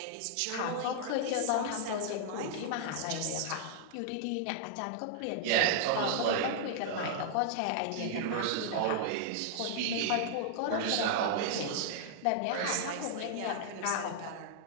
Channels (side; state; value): both; different; correlation -0.01